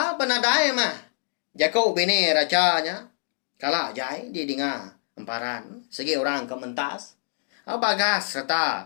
penadai mah. Jago bini racanya kalah jai di dengar emparan segi orang kementas. Bagas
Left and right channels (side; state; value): right; silent; 62 dB below the other